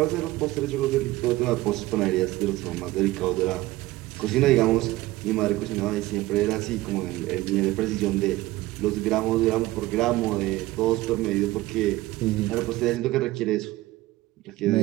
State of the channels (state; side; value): quieter; left; 17.9 dB